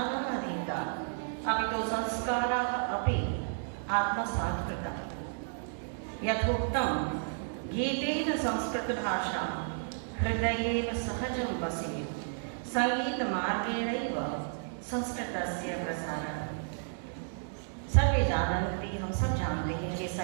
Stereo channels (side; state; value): left; silent; digital silence